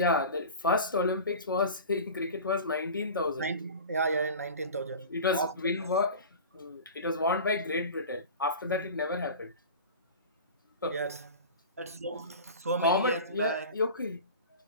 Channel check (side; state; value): both; inverted; correlation -0.34